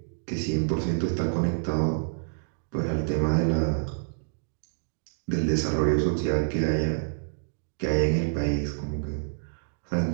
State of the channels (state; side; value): silent; left; digital silence